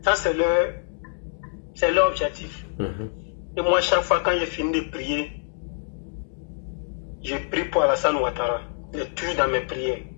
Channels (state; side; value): silent; right; digital silence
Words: Ça, c'est leur objectif. Et moi, chaque fois quand j'ai fini de prier, je prie pour Alassane Ouattara. Je tue dans mes prières.